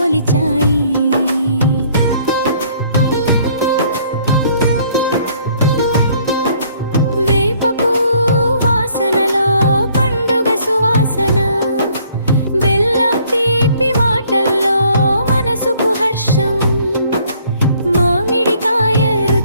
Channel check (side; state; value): both; inverted; correlation -0.62